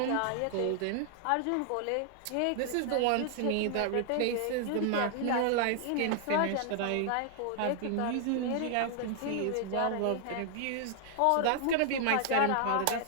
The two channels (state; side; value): different; both; correlation 0.00